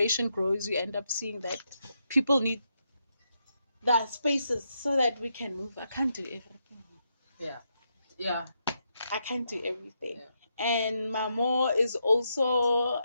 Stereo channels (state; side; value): inverted; both; correlation -0.81